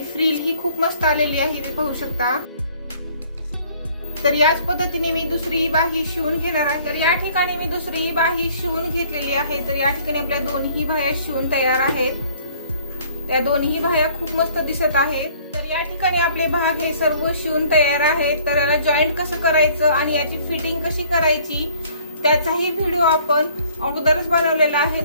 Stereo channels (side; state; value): both; inverted; correlation -0.57